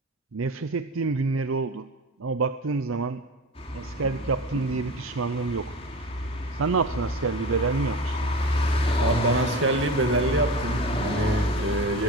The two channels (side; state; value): both; normal; correlation 0.31